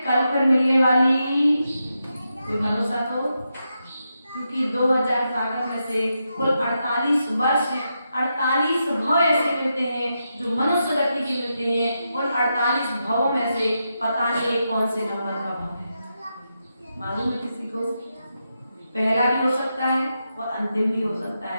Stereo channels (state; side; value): inverted; both; correlation -0.86